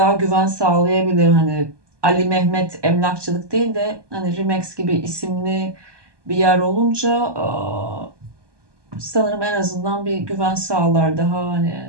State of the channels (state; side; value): late; left; 1.2 ms